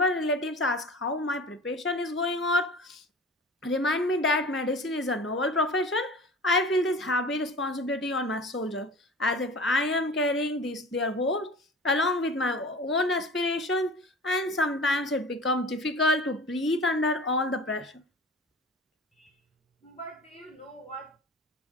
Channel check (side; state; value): both; normal; correlation 0.38